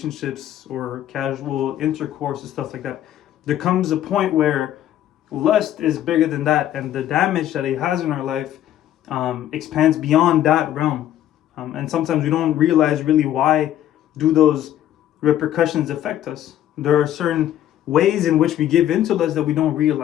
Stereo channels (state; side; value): quieter; right; 11.9 dB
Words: or casual intercourse and stuff like that. There comes a point where lust is bigger than that, and the damage that it has in our life expands beyond that realm. And sometimes we don't realize really why do those repercussions affect us. There are certain ways in which we give into lust that we don't